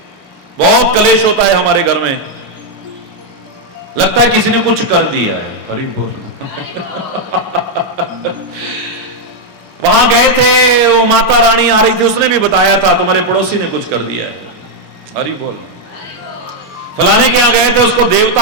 बहुत कलेश होता है हमारे घर में। लगता है किसी ने कुछ कर दिया है। हरि बोल। वहां गए थे, वो माता रानी आ रही थी, उसने भी बताया था तुम्हारे पड़ोसी ने कुछ कर दिया है। हरि बोल। फलाने के यहां गए थे, उसको देवता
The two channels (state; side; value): normal; both; correlation 0.00